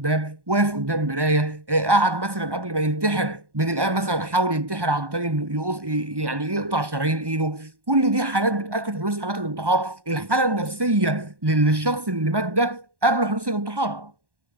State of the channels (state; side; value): late; left; 1.1 ms